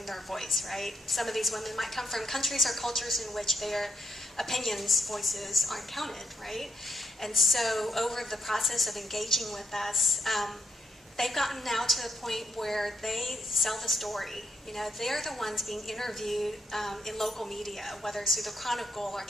their voice, right? Some of these women might come from countries or cultures in which their opinions, voices aren't counted, right? And so over the process of engaging with us, they've gotten now to the point where they sell the story. You know, they're the ones being interviewed in local media, whether it's through the Chronicle or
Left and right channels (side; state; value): both; normal; correlation 0.76